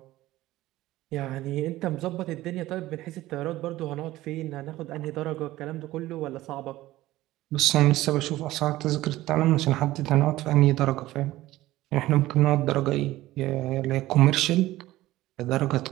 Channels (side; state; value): left; quieter; 16.4 dB